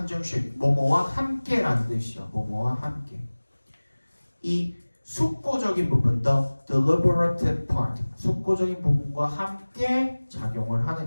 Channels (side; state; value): both; inverted; correlation -1.00